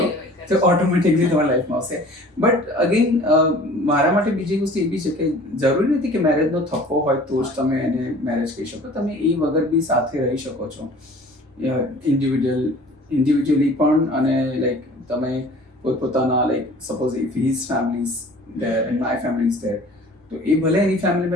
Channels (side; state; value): both; normal; correlation 0.47